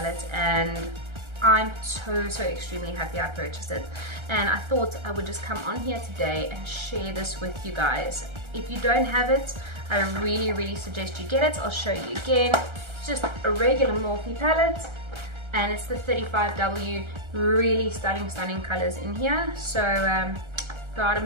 and I'm so extremely happy I purchased it. And I thought I would just come on here today and share this with you guys. If you don't have it, I really suggest you get it. I'll show you again. It's just a regular Morphe palette, and it's the 35W. Really stunning colors in here. So go out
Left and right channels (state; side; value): late; left; 1.3 ms